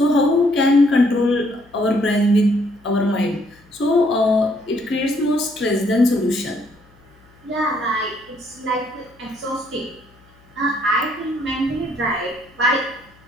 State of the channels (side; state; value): left; noise; hum, 30 dB below the sound